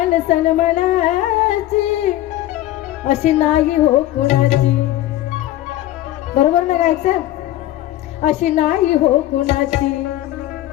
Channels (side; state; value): right; quieter; 14.6 dB